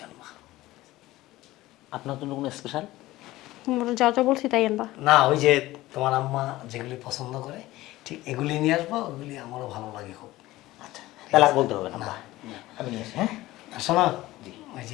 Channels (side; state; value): right; quieter; 17.4 dB